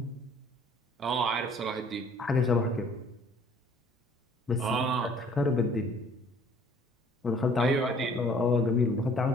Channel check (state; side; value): normal; both; correlation 0.56